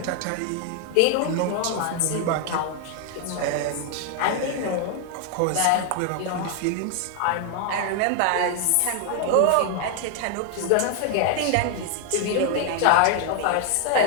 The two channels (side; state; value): both; different; correlation 0.00